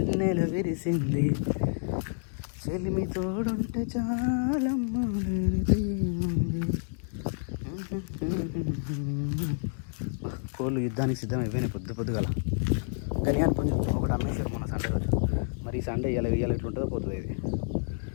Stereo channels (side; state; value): right; silent; digital silence